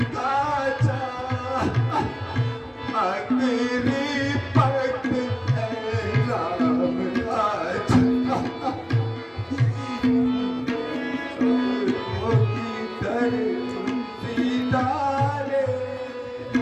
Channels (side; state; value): both; identical; correlation 1.00